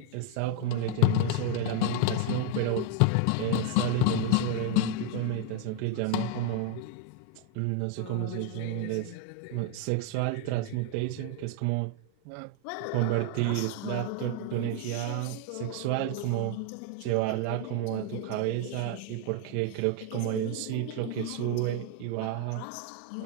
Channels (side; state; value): both; different; correlation 0.01